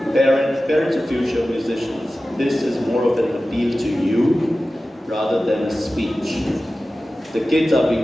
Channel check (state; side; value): normal; both; correlation 0.95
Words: parents of future musicians. This is more of an appeal to you rather than a speech. The kids are